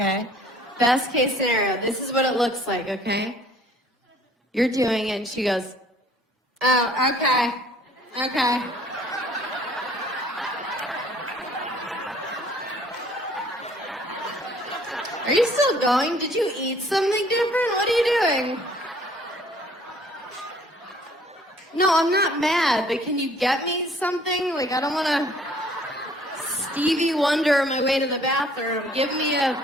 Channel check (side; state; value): both; normal; correlation 0.57